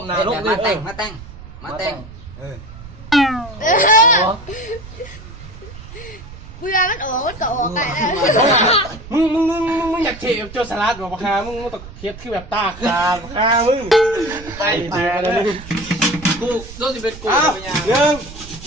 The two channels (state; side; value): noise; right; rumble, 15 dB below the sound